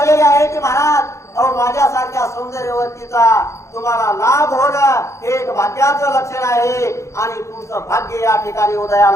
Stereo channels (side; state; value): right; late; 0.14 ms